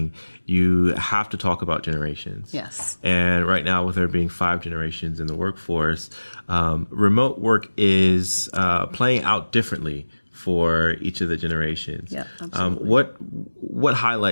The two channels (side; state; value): both; inverted; correlation -1.00